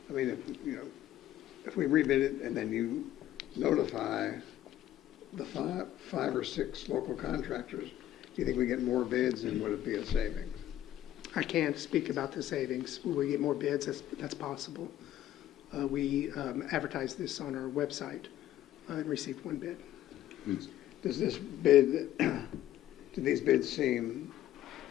I mean, if we rebid it and then you notify the five or six local contractors, do you think we get more bids and would it be a savings? I can't speak about the savings. Will we get more bids? That's possible. We advertised this on our website and received one bid. Does this bid, do these bids seem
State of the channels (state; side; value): quieter; right; 12.9 dB